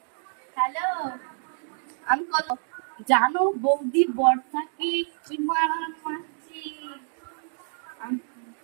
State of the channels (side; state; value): left; silent; digital silence